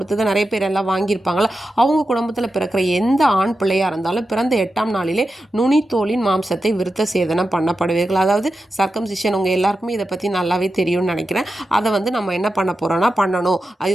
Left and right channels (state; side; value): normal; both; correlation 0.91